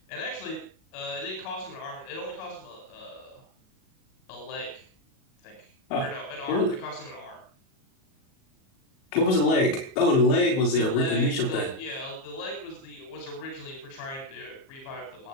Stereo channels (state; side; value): late; right; 37 ms